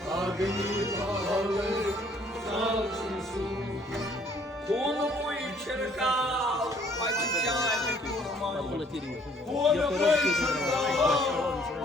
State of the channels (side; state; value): both; normal; correlation 0.61